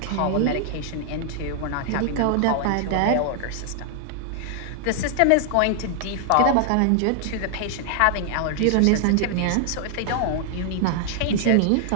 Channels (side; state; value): both; different; correlation 0.00